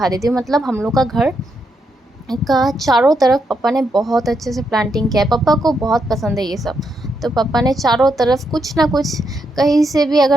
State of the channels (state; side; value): normal; both; correlation 0.80